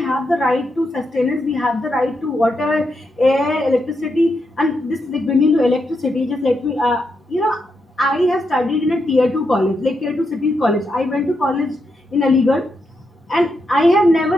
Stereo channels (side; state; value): both; normal; correlation 0.83